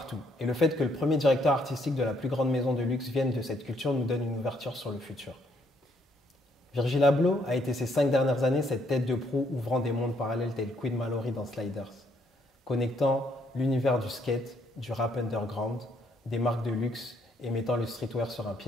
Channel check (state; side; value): normal; both; correlation 0.70